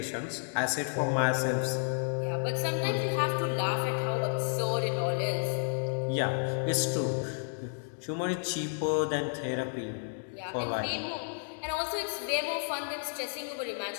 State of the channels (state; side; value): silent; right; digital silence